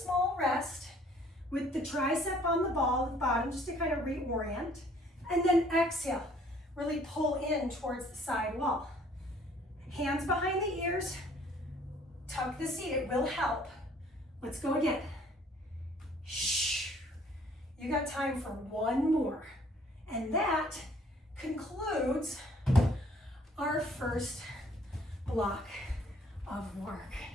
rest with the tricep on the ball at the bottom just to kind of reorient. And then exhale, really pull in towards the side wall. Hands behind the ears, tuck the seat, it will help. Let's go again. Shh. You got time for one more. And that concludes our first block of work.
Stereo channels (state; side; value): normal; both; correlation 0.59